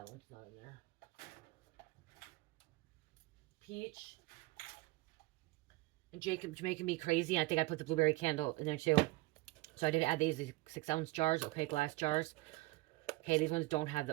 one's not in there. Peach. And Jacob's making me crazy. I think I put the blueberry candle in there too. So I did add these 6 ounce jars, okay, glass jars. Okay, these ones don't have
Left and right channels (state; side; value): quieter; left; 21.4 dB